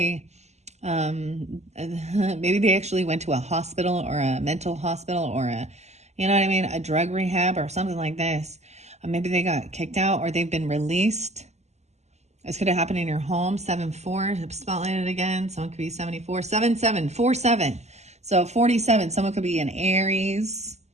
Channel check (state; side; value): late; left; 0.33 ms